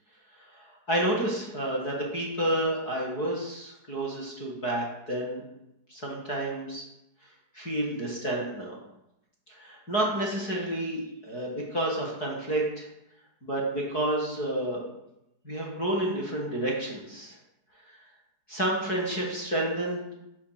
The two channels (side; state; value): right; late; 4.7 ms